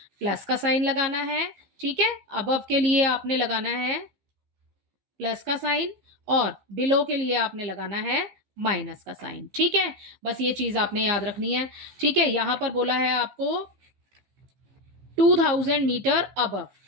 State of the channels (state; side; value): late; left; 15 ms